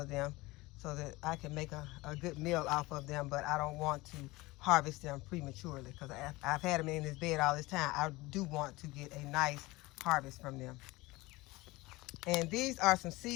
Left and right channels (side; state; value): right; quieter; 21.1 dB